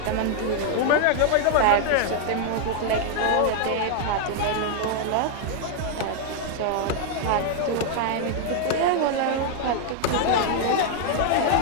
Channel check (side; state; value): both; different; correlation 0.00